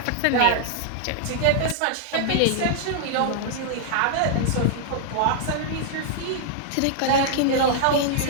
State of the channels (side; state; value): both; different; correlation -0.01